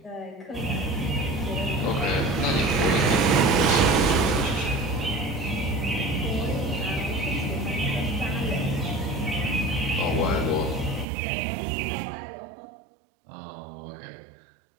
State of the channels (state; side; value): drops out; left; at 11.1 s